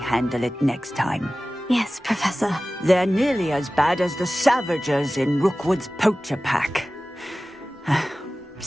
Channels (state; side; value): normal; both; correlation 0.96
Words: it next time. Yes, Professor. They're nearly as bad as the Savagers in Rookwood's poacher pack.